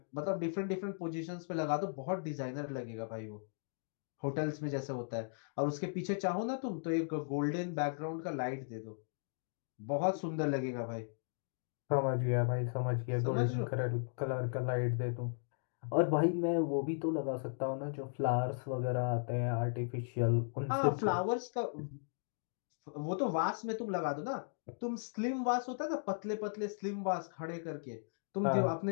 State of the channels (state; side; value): silent; right; digital silence